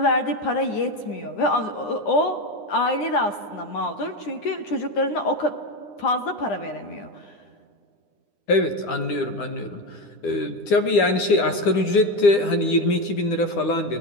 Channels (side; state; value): right; late; 9.9 ms